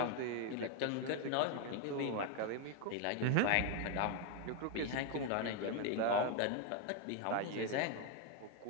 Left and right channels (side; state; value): both; different; correlation 0.01